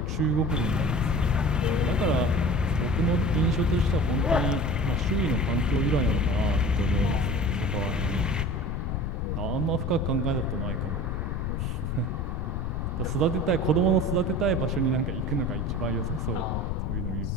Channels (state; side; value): noise; left; rumble, 1 dB below the sound